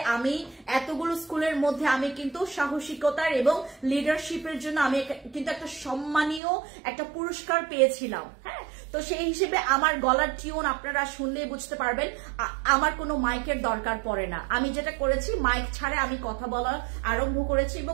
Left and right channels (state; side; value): drops out; left; at 6.4 s